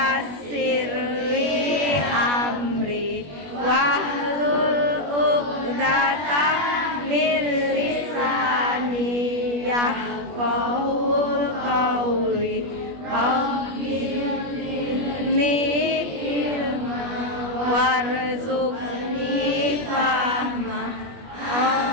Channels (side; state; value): left; late; 21 ms